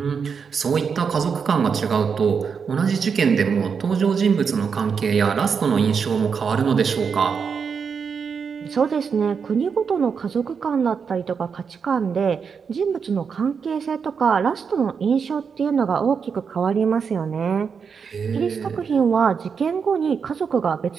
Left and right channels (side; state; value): left; quieter; 6.1 dB